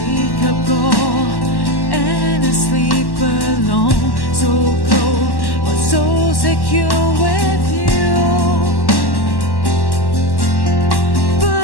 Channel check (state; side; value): late; right; 1.1 ms